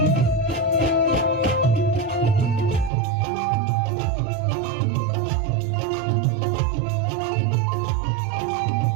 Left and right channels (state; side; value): drops out; left; at 2.9 s